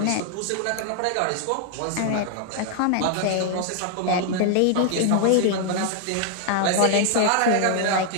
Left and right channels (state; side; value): different; both; correlation 0.00